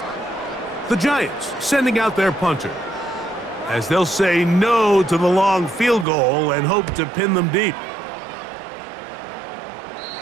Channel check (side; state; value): left; drops out; at 6.1 s